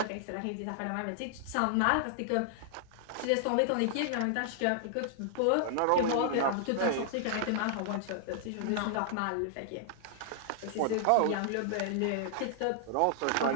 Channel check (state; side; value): different; both; correlation -0.01